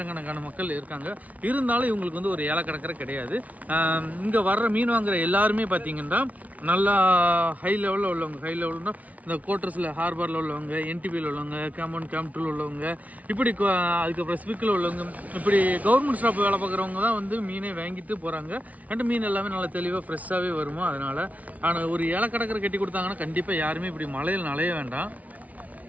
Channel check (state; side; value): late; left; 0.071 ms